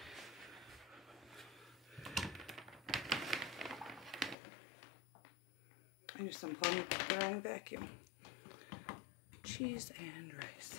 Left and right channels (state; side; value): drops out; right; at 4.4 s